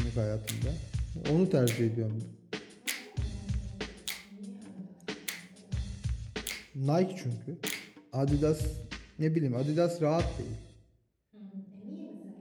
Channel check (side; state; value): both; identical; correlation 1.00